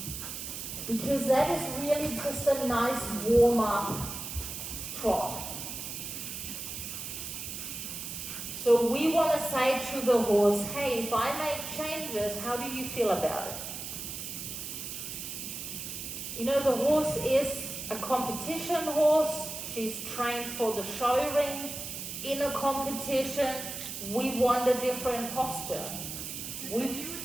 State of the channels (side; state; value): right; noise; hiss, 7 dB below the sound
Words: because that is really just a nice warm-up trot. So we want to say to the horse, hey, if I make changes, how do you feel about it? You know, the horse is a competition horse. She's trained for the show ring. In a competition, we want a different posture. So you